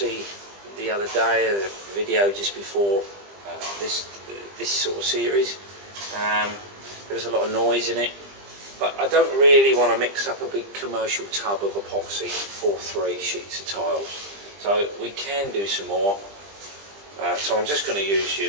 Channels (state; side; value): late; left; 20 ms